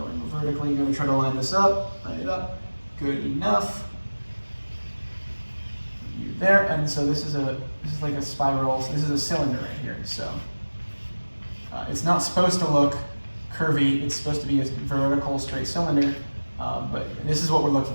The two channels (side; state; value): both; inverted; correlation -1.00